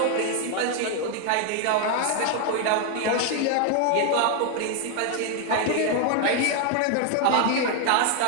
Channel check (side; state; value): both; different; correlation 0.00